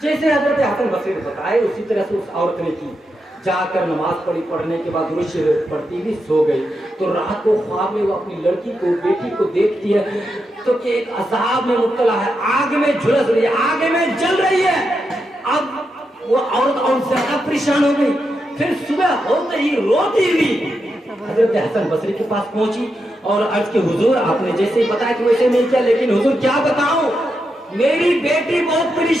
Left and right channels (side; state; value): both; normal; correlation 0.85